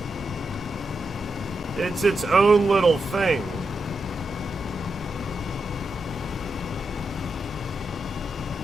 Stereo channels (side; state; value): both; normal; correlation 0.86